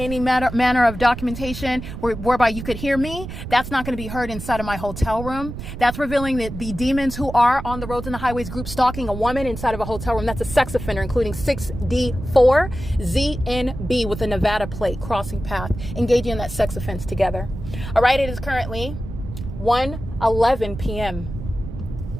any manner of documentation whereby you could hear me. That's not going to be heard inside of my hotel room. That's revealing that the demons who are on the roads and the highways group stalking a woman inside of a hotel room. That's a sex offender, including 6D4ZNB with a Nevada plate, crossing path, engaging in that sex offense together. All right, it is currently 1:11 p.m.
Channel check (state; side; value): noise; right; rumble, 9 dB below the sound